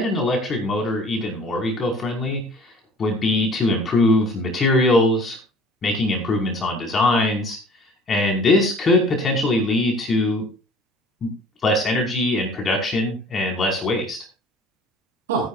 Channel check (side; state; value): both; normal; correlation 0.49